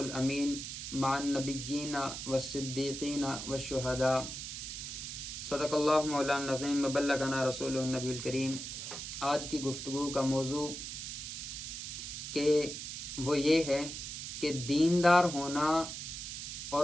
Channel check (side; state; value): right; noise; hiss, 7 dB below the sound